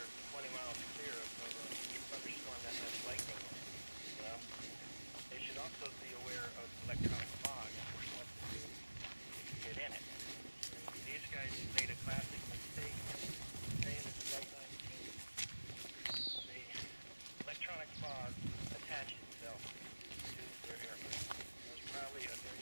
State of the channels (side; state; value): both; inverted; correlation -1.00